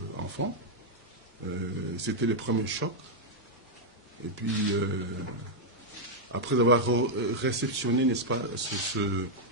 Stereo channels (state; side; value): normal; both; correlation -0.03